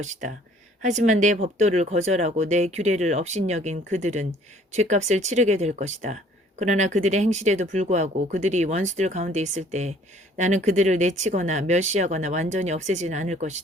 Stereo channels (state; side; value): normal; both; correlation 0.56